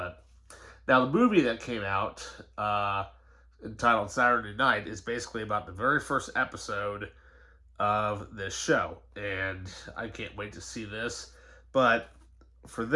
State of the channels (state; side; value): identical; both; correlation 1.00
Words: now the movie that came out, entitled Saturday Night, is basically about the very first episode of this show, and I can't wait to see this. But for